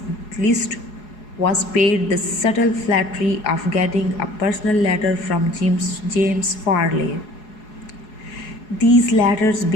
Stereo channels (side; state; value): right; late; 4.8 ms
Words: list was paid the subtle flattery of getting a personal letter from James Farley. These letters